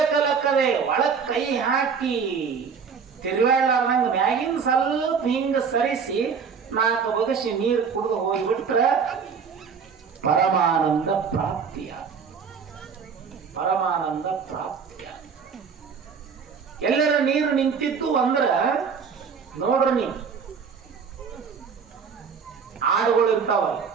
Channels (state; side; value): quieter; left; 6.2 dB